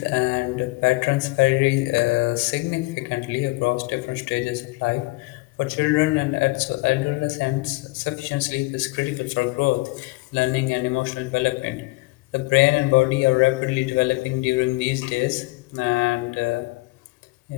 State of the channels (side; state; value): right; quieter; 24.2 dB